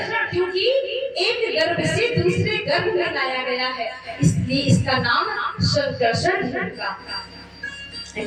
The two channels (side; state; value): both; identical; correlation 1.00